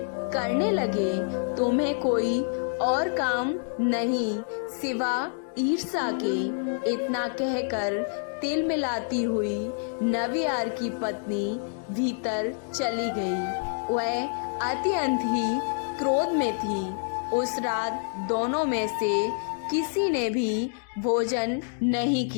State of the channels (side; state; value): right; silent; digital silence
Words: करने लगे। तुम्हें कोई और काम नहीं सिवा ईर्ष्या के। इतना कहकर तिल मिलाती हुई नवियार की पत्नी भीतर चली गई। वह अत्यंत ही क्रोध में थी। उस रात दोनों में से किसी ने भी भोजन नहीं